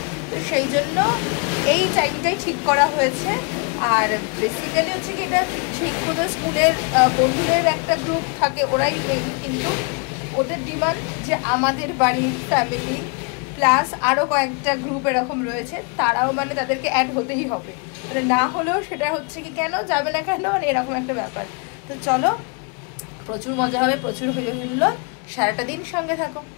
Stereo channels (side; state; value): right; quieter; 35.4 dB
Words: তো সেই জন্য এই টাইমটাই ঠিক করা হয়েছে। আর বেসিক্যালি হচ্ছে কি এটা শিক্ষকদের স্কুলের বন্ধুদের একটা গ্রুপ থাকে, ওরাই মেইন, কিন্তু ওদের ডিমান্ড যে আমাদের বাড়ির ফ্যামিলি প্লাস আরও কয়েকটা গ্রুপ এরকম রয়েছে, তারাও মানে তাদেরকে অ্যাড হতেই হবে, মানে না হলেও সেটা হচ্ছে কি কেন যাবে না কেন, মানে এরকম একটা ব্যাপার। তো চলো, প্রচুর মজা হবে, প্রচুর হইলো, সারাটা দিন সঙ্গে থাকো।